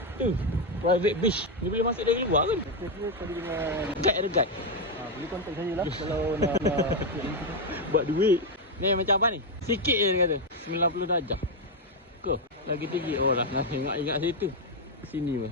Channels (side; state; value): both; normal; correlation 0.04